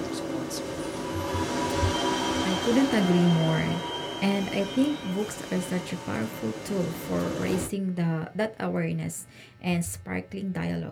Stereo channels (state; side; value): identical; both; correlation 1.00